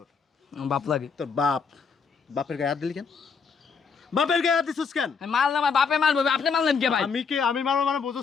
বাপ লাগে তোর বাপের গায়ে হাত দিলি কেন? বাপের গায়ে হাত দিছিস কেন? মারলাম, আমার বাপে মারবো, আপনি মারলেন কে ভাই? আমি মারবো মানে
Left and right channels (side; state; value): right; quieter; 5.6 dB